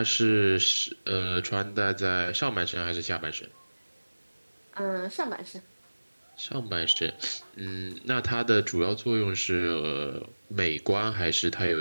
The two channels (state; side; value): inverted; both; correlation -1.00